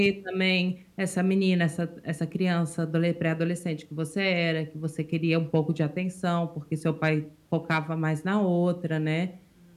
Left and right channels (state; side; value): identical; both; correlation 1.00